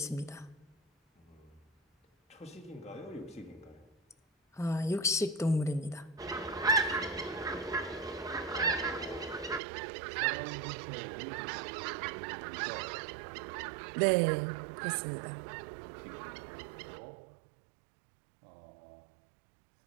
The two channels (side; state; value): left; drops out; at 9.6 s